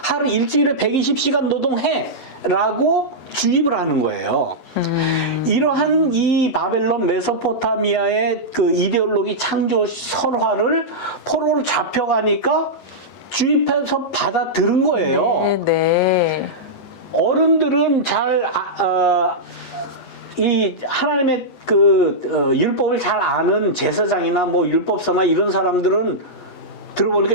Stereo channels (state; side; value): late; right; 11 ms